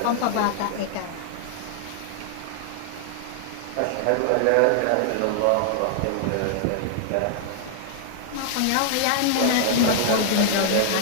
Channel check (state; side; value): different; both; correlation -0.01